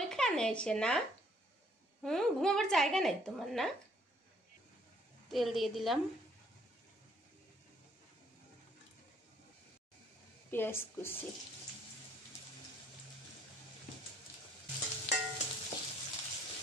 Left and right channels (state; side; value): normal; both; correlation 0.64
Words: এখানে এসে না? ঘুমাবার জায়গা নাই তোমার না? তেল দিয়ে দিলাম, পেঁয়াজ কুচি,